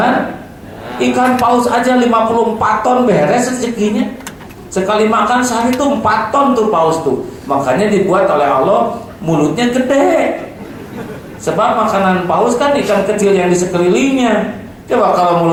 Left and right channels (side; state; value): both; identical; correlation 1.00